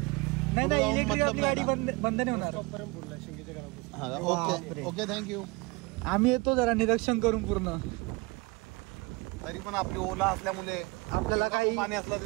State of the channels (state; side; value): quieter; left; 25.6 dB